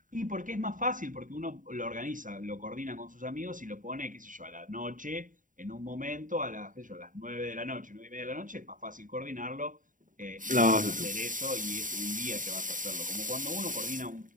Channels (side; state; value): left; late; 0.38 ms